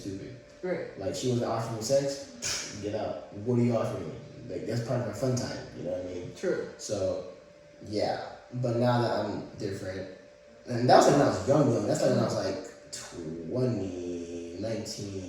Right. Like, she wasn't offering me sex, get out. What are you offering me? Like, that's part of our fun time, you know what I mean? True. So, yeah. But now that I'm different, and that was like when I was young. That's like when I was like 20,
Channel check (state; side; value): identical; both; correlation 1.00